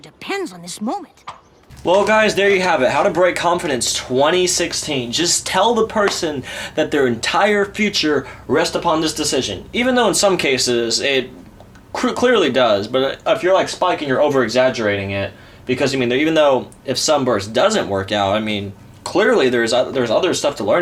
on this moment. Well, guys, there you have it. How to Break Confidence 2016. Just tell the person that their entire future rests upon this decision. Even though in some cases it clearly does. But if you're like Spike and you're over-exaggerating it, because, I mean, even though if Sunburst doesn't work out, I mean, clearly there's other stuff to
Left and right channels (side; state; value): both; identical; correlation 1.00